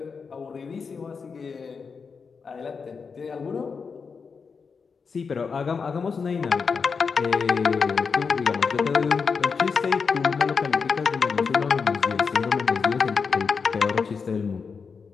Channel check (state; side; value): quieter; right; 5.4 dB